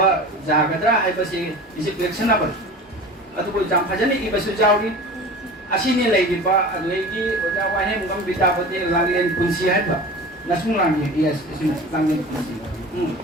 jagadra ai basi is collectionable adu ko jam phajani i basu jawri asini leiji ba leiji oja wa he mungam bita pate langlen kunsi hai ba nasung lang ye yes langlen kunsi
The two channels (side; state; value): both; normal; correlation 0.36